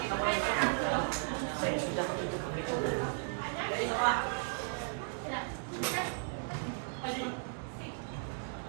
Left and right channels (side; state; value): left; silent; 54 dB below the other